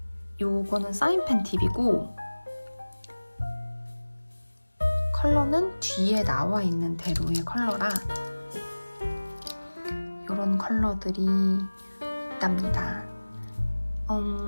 요거는 사인펜 팁이고 컬러는 뒤에 나와 있는 대로의 컬러라 요런 컬러들이 있답니다.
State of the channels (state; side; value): inverted; both; correlation -1.00